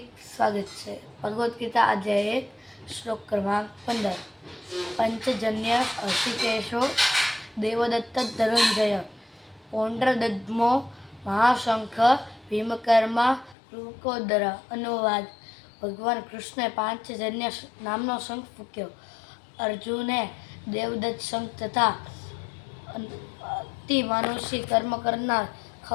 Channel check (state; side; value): drops out; right; at 13.6 s